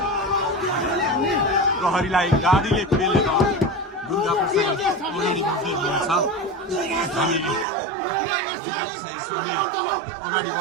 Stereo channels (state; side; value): drops out; left; at 7.7 s